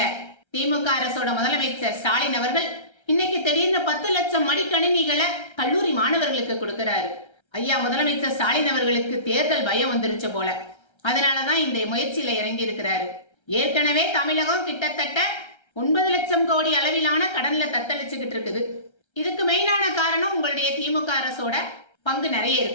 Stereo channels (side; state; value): right; late; 1.3 ms